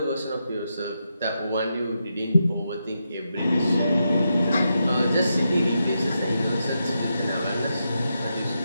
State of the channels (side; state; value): both; inverted; correlation -0.85